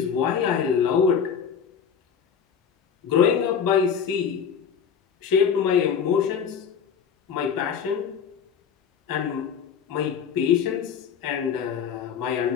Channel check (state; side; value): quieter; right; 7.3 dB